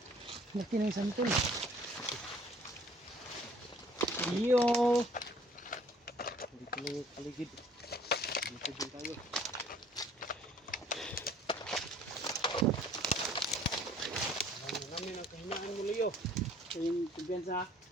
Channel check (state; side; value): normal; both; correlation 0.56